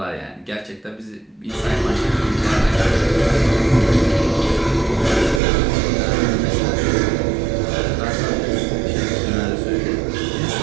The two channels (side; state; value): left; drops out; at 5.4 s